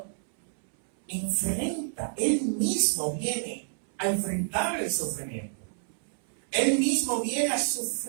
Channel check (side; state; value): left; silent; 59 dB below the other